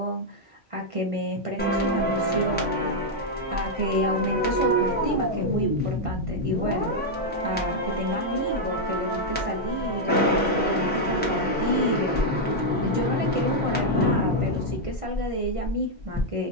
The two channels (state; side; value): normal; both; correlation -0.02